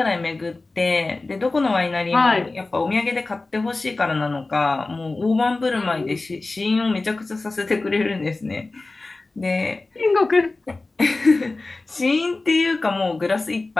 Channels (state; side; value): quieter; right; 3.3 dB